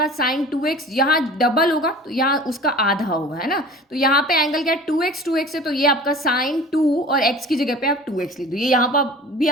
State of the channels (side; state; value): both; normal; correlation 0.41